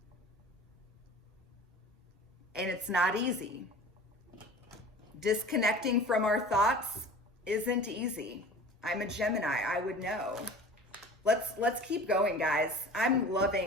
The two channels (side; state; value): both; normal; correlation 0.41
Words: And it's not easy. Disconnecting from our thoughts isn't easy. I'm a Gemini, I would know. Let's keep going, guys. I'm